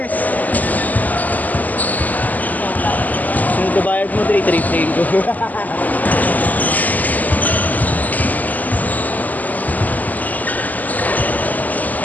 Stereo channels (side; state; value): right; late; 0.080 ms